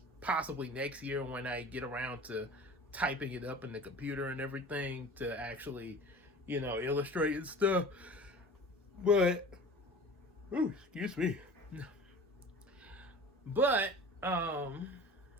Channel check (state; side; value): normal; both; correlation 0.40